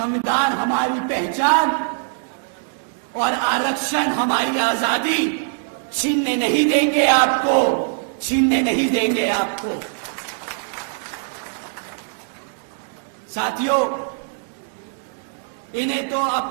हमारी पहचान और आरक्षण हमारी आजादी छीनने नहीं देंगे आपको, छीनने नहीं देंगे आपको। साथियों, इन्हें तो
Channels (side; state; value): left; silent; digital silence